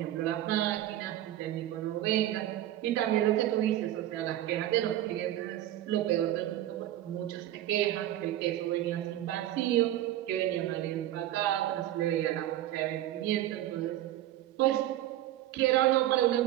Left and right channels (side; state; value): left; quieter; 13.4 dB